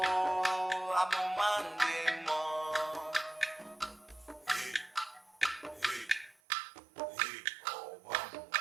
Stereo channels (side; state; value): left; drops out; at 6.4 s